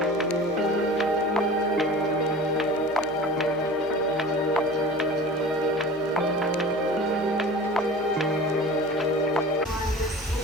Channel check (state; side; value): normal; both; correlation 0.38